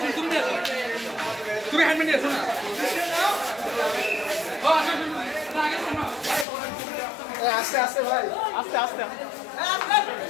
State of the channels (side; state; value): right; drops out; at 6.5 s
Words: তুমি হ্যান্ডমেড নিয়ে আসো না আস্তে আস্তে ভাই আস্তে আস্তে